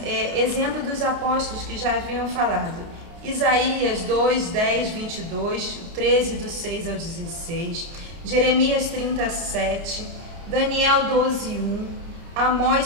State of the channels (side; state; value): left; late; 30 ms